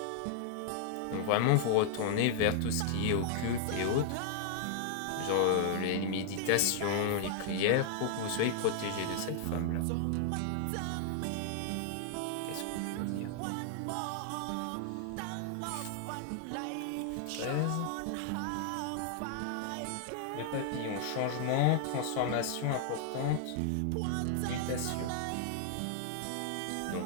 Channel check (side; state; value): both; different; correlation -0.01